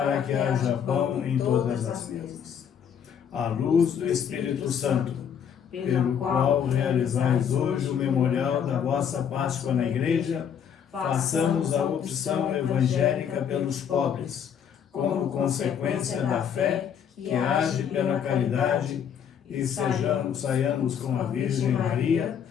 que haja pão em todas as mesas. À luz do Espírito Santo, pelo qual realizais hoje o memorial da vossa Páscoa na Igreja, façamos a opção evangélica pelos pobres, como consequência da fé que age pela caridade, e saiamos com a Virgem Maria,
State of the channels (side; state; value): right; quieter; 8.1 dB